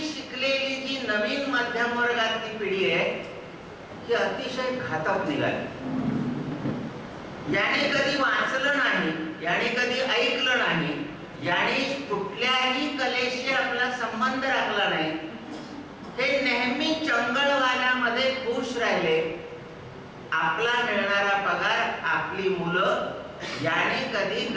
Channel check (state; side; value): identical; both; correlation 1.00